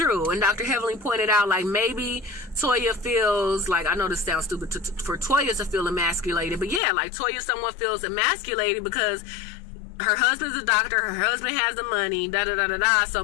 And Dr. Heavenly pointed out, like, maybe Toya feels like, I know this sounds stupid for Toya to feel emasculated, but yeah, like Toya somewhat feels emasculated because her husband's a doctor, her husband has the money, da-da-da-da-da, so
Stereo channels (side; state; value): right; drops out; at 6.8 s